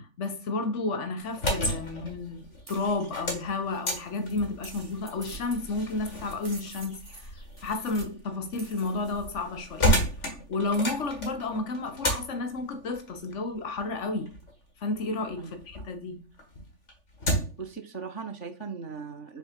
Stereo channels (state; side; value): late; right; 3.4 ms